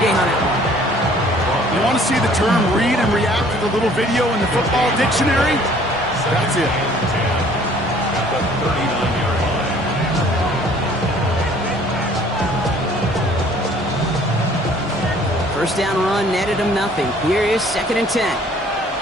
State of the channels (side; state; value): both; normal; correlation 0.56